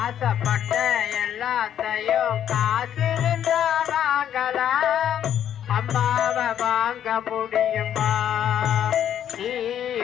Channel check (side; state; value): right; quieter; 10.0 dB